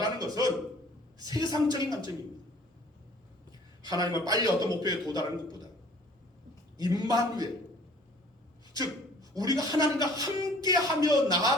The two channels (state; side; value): normal; both; correlation 0.53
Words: 것은 세상적인 관점입니다. 하나님은 빨리 어떤 목표에 도달하는 것보다 임마누엘, 즉 우리가 하나님과 함께하며